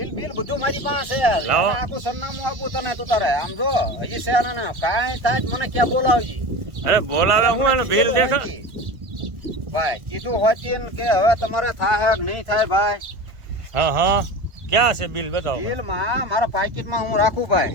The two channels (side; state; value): left; late; 1.5 ms